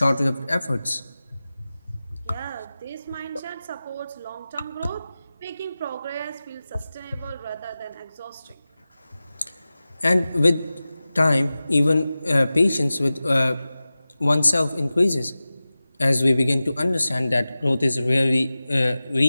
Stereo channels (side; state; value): both; inverted; correlation -0.96